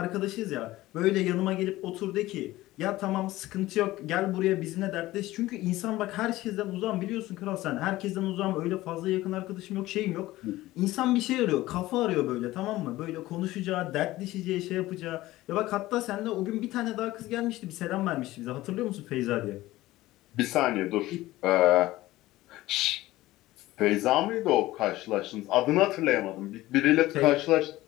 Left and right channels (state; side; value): quieter; right; 17.2 dB